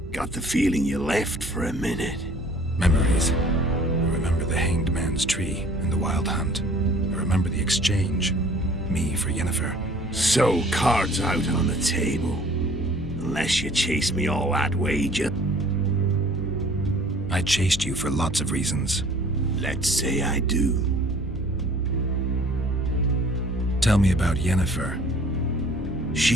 Got the feeling you left for a minute. Memories. I remember the Hanged Man's Tree and the Wild Hunt. I remember the exchange. Me for Yennefer. So, cards out on the table. Unless you chase me all that way, I chased you for lots of reasons. Let's say I do. Tell me about Yennefer.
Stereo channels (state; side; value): noise; right; hum, 16 dB below the sound